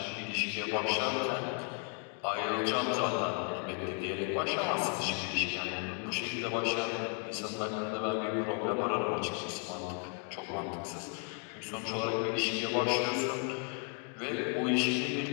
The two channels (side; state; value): right; quieter; 36.4 dB